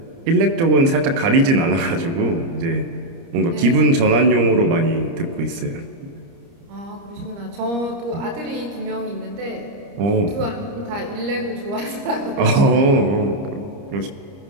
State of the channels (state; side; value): late; left; 30 ms